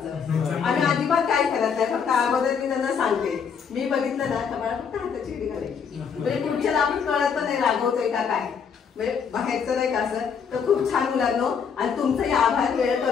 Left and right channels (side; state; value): right; quieter; 6.6 dB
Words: आम्ही अजिबात काय करत नाही, फक्त अगोदर मी त्यांना सांगते, मी बघितलं ना तर मला फक्त हाताची वेळ घालायची. म्हणजे पुढच्याला आपण कळत पण नाही रागवतोय का काय, म्हणजे बाहेरचं नाही का असं. तर खूप छान मुलांनो, आणि तुमचाही आभार. वेळ